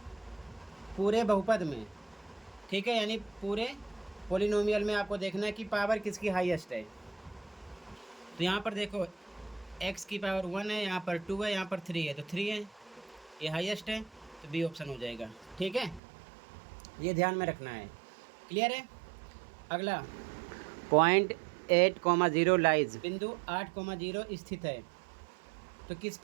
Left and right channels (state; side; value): drops out; left; at 16.0 s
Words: पूरे बहुपद में, ठीक है, यानी पूरे पोलिनोमियल में आपको देखना है कि पावर किसकी हाईएस्ट है। तो यहाँ पर देखो, x की पावर 1 है, यहाँ पर 2 है, यहाँ पर 3 है, तो 3 है, ये हाईएस्ट है, तो बी ऑप्शन हो जाएगा, ठीक है। ये ध्यान में रखना है, क्लियर है। अगला, पॉइंट 8,0 लाइज, बिंदु 8,0 स्थित है। तो किस